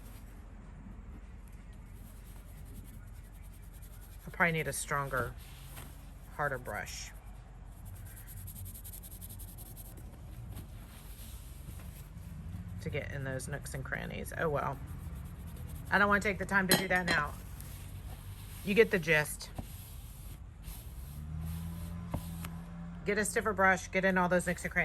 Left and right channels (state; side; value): identical; both; correlation 1.00